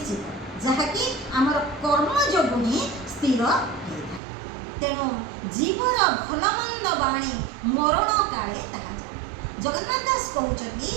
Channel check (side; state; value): left; drops out; at 4.2 s